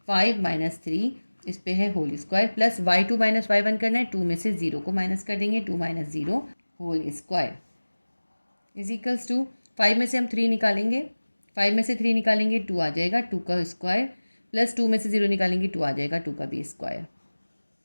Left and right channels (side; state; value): both; inverted; correlation -1.00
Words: 5 माइनस 3 इस पे है whole square plus y2 minus y1 करना है। 2 में से 0 को माइनस कर देंगे, 2 minus 0 whole square is equals to 5 में से हम 3 निकालेंगे, 5 में से 3 निकालेंगे 2 आ जाएगा, 2 का स्क्वायर प्लस 2 में से 0 निकालेंगे 2 आ जाएगा, 2 का भी स्क्वायर।